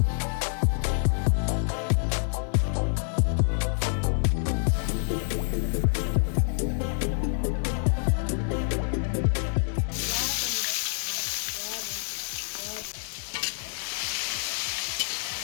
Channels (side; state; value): right; silent; digital silence